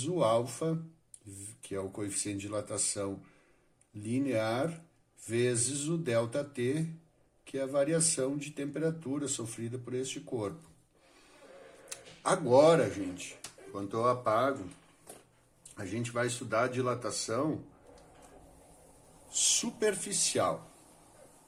o alfa, que é o coeficiente de dilatação linear, vezes o ΔT, que é a variação de temperatura sofrida por este corpo. Agora, gente, quando eu apago, a gente vai estudar a dilatação superficial,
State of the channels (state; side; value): identical; both; correlation 1.00